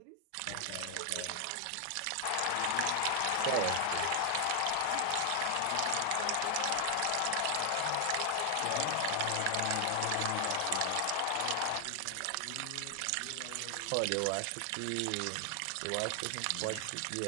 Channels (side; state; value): both; different; correlation 0.00